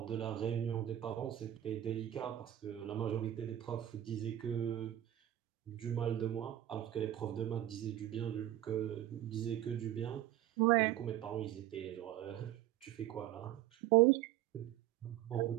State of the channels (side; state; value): left; quieter; 12.7 dB